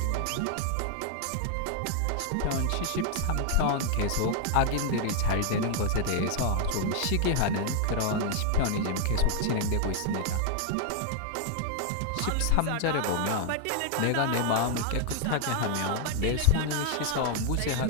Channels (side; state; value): both; different; correlation 0.00